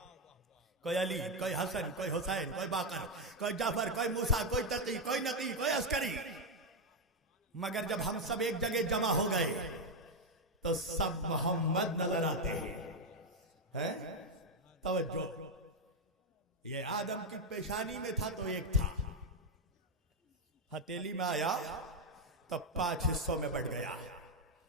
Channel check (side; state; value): both; normal; correlation 0.04